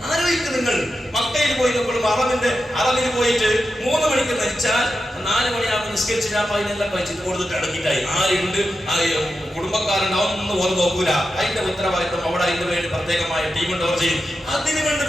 ആലോചിക്കും. നിങ്ങൾ മക്കയിൽ പോയി നോക്കുമ്പോൾ അറബിന് പോയിട്ട് 3 മണിക്ക് മരിച്ചാൽ 4 മണിയാകുമ്പോൾ നിസ്കരിച്ച് അതിനെല്ലാം കഴിച്ചിട്ട് കൊടുത്തിട്ട് അടങ്ങിയിട്ടായി. ആരുണ്ട്, കുടുംബക്കാരുണ്ട്, ഒന്നും ഓർമ്മ നോക്കൂല. അതിന്റെ ഉത്തരവാദിത്വം അവിടെ അതിന് വേണ്ടി പ്രത്യേകമായ ടീം ഉണ്ടവർ ചെയ്യും. അതിനു വേണ്ടി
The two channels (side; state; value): both; normal; correlation 0.90